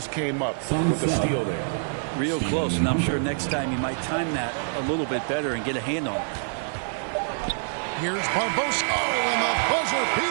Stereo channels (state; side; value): silent; left; digital silence